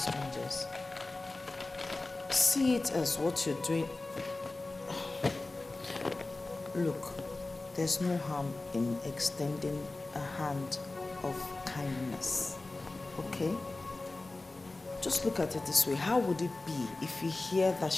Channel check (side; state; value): right; quieter; 3.2 dB